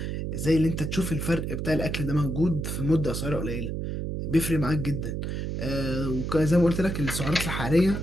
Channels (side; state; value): right; noise; hum, 3 dB below the sound